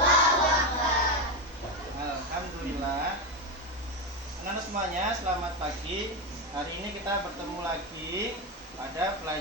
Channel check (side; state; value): both; normal; correlation 0.12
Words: Akbar. Alhamdulillah. Anak-anak semuanya, selamat pagi. Hari ini kita bertemu lagi pada